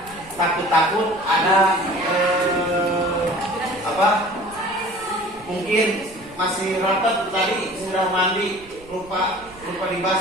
Takut-takut ada mungkin masih rapat tadi sudah mandi lupa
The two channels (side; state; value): right; noise; rumble, 23 dB below the sound